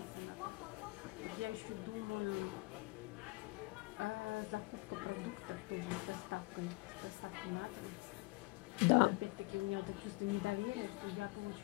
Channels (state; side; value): quieter; right; 24.6 dB